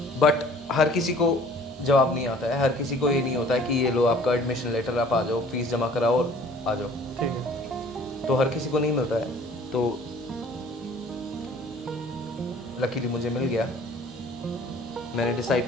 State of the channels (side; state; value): both; normal; correlation 0.52